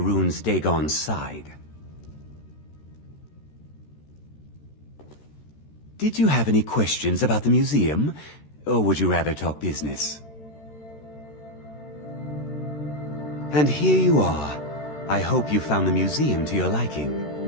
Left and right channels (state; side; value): late; right; 13 ms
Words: Dagon's side. Did you have any questions about the museum, or would you rather talk business? And here you are. I hope you found the museum to your liking.